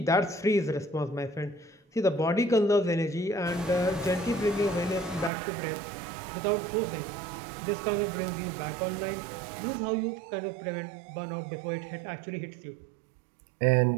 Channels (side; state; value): left; drops out; at 5.3 s